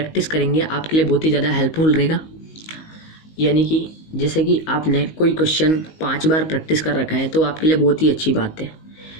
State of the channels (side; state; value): right; late; 19 ms